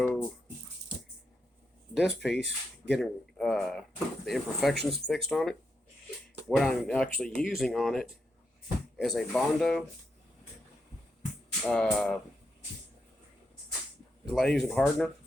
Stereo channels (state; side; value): normal; both; correlation 0.83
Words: this piece, getting the imperfections fixed on it. What I'm actually using on it is a Bondo glaze and hardener.